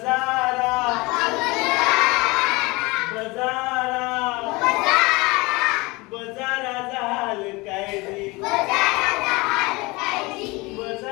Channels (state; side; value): quieter; right; 24.0 dB